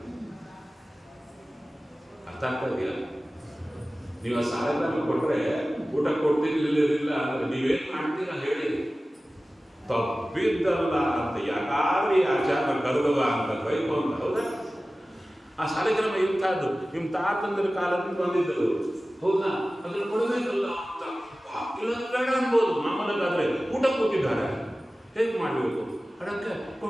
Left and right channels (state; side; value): normal; both; correlation 0.96